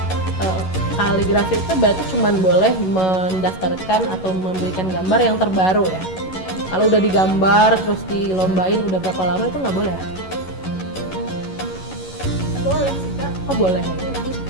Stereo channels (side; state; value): right; late; 11 ms